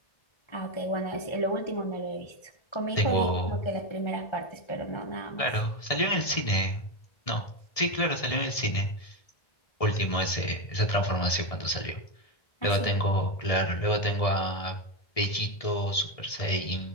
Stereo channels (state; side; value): late; right; 1.7 ms